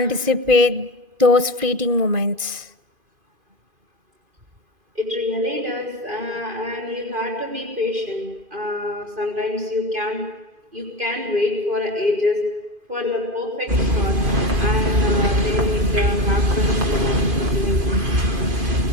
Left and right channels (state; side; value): late; left; 2.5 ms